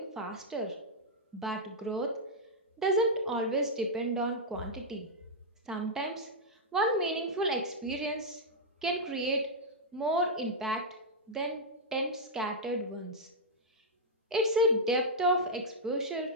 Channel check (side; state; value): both; normal; correlation -0.06